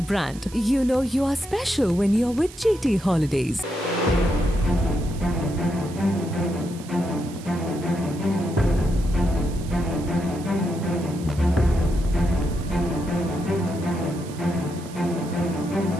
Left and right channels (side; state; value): right; noise; hiss, 18 dB below the sound